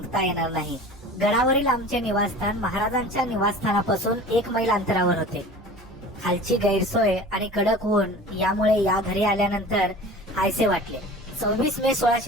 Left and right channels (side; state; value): both; normal; correlation 0.39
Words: येणार नाही. गडावरील आमचे निवासस्थान महाराजांच्या निवासस्थानापासून 1 मैल अंतरावर होते. खालची गैरसोय आणि कडक ऊन यामुळे या घरी आल्यानंतर हायसे वाटले. 26 मे